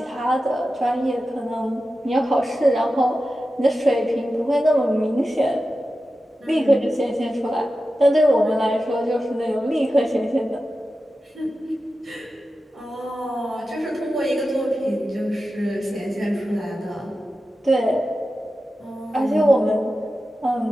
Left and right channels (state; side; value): normal; both; correlation 0.93